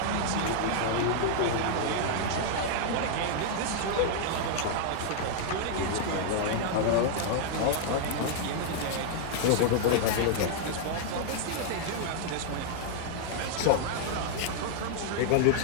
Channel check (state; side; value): different; both; correlation 0.00